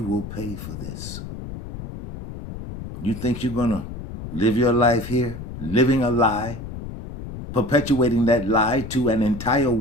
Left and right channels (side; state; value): left; noise; rumble, 10 dB below the sound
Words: will pay for this. You think you're going to live your life here, living a lie, perpetuating that lie to an entire